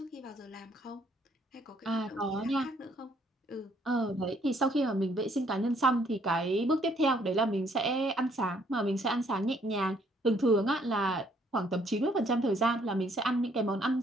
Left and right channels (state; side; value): normal; both; correlation 0.66